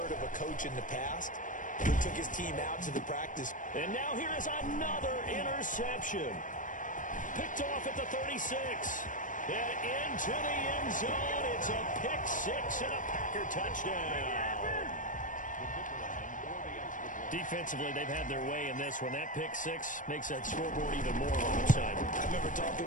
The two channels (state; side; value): late; right; 0.38 ms